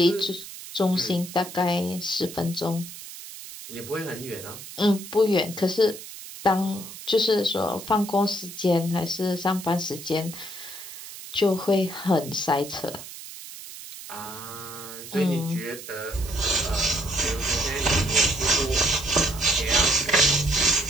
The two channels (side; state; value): right; noise; hiss, 13 dB below the sound